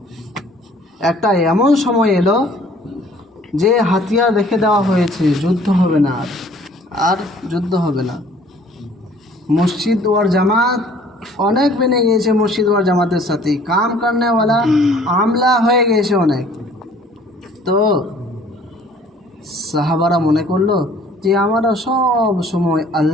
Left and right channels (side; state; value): both; normal; correlation 0.55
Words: একটা এমন সময় এলো যে হাতিয়ার রেখে দেওয়া হয়েছে, যুদ্ধ হবে না, আর যুদ্ধ হবে না। মসজিদ ওয়ার জামাত অনেক বেড়ে গিয়েছে, মসজিদ ওয়ার জামাতের সাথে কাম করনেওয়ালা আমলা হয়ে গেছে অনেক। তো সাহাবারা মনে করলো যে আমরা সব সময়